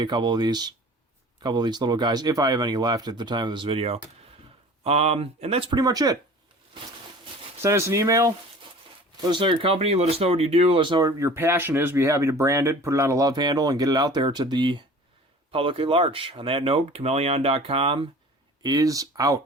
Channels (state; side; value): normal; both; correlation 0.43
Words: a couple of these little guys, if I have any left at the time of this video. And that's pretty much it. Send us an email. Let us know your company. Let us know what you do. Let us know what your passion is. Be happy to brand it, put it on a Lovehandle, and get it out there to the public at large. On that note, Chmelaeon.com is